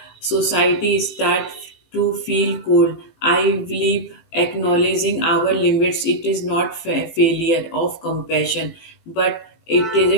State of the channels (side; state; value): right; late; 18 ms